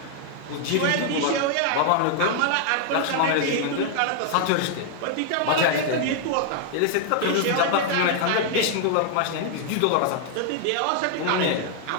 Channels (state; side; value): different; both; correlation 0.00